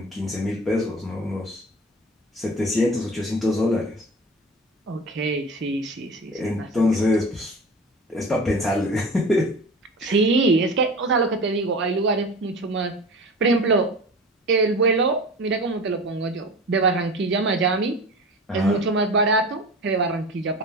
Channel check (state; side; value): normal; both; correlation 0.34